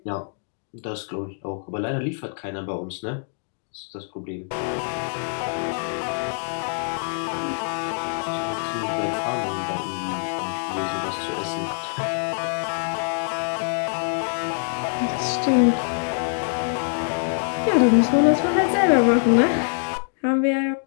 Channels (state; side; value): silent; right; 62 dB below the other